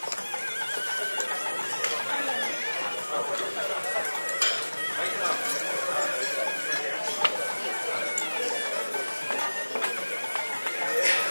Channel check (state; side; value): inverted; both; correlation -1.00